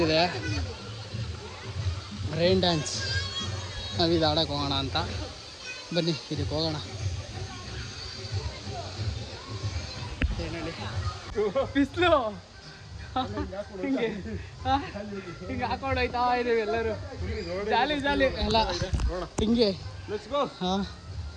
ರೈನ್ ಡ್ಯಾನ್ಸ್ ನಾವು ಇದು ಆಡೋಕೆ ಹೋಗೋಣ ಅಂತ, ಬನ್ನಿ ಇದಕ್ಕೆ ಹೋಗೋಣ. ಏನೇಳಿ ಬಿಸಿಲು ಹಿಂಗೆ ಹಿಂಗೆ ಹಾಕೊಂಡು ಹೋಯ್ತಾ ಇದ್ದೀವಿ ಎಲ್ಲರೂ, ಜಾಲಿ ಜಾಲಿ ಎಲ್ಲ ಹಿಂಗೆ. ಹಾಂ,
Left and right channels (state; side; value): identical; both; correlation 1.00